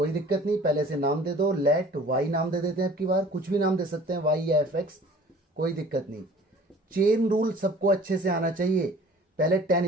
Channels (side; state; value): both; normal; correlation 0.49